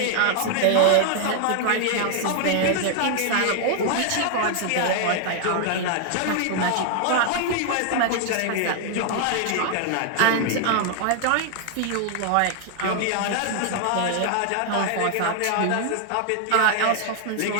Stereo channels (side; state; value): both; different; correlation 0.00